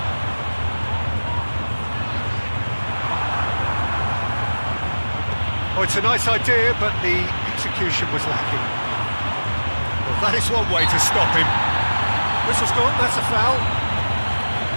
Oh, it's a nice idea, but the execution was lacking. Well, that is one way to stop him. Whistle's gone, that's a foul.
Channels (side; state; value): both; inverted; correlation -1.00